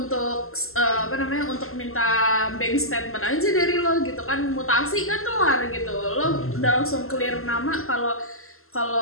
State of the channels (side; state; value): right; late; 0.62 ms